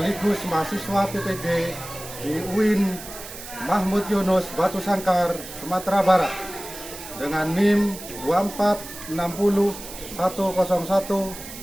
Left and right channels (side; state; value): right; noise; hiss, 13 dB below the sound